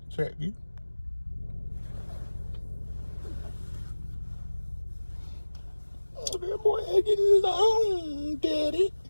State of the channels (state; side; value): inverted; both; correlation -1.00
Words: Check you. Oh, that boy ain't getting his own, daddy.